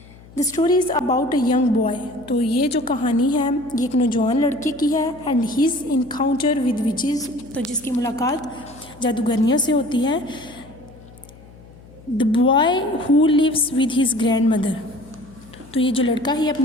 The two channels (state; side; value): noise; left; hum, 22 dB below the sound